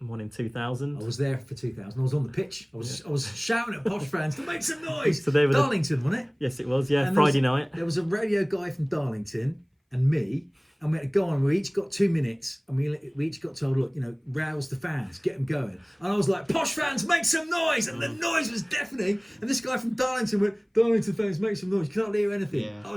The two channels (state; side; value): identical; both; correlation 1.00